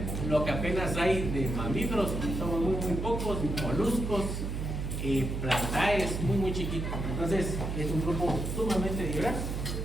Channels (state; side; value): noise; right; hum, 3 dB below the sound